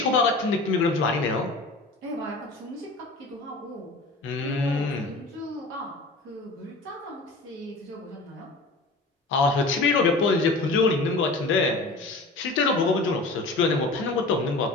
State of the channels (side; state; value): right; quieter; 3.1 dB